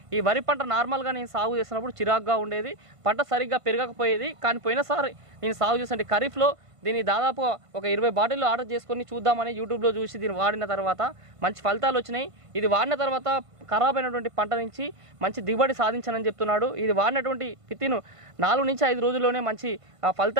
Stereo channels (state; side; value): late; left; 1.5 ms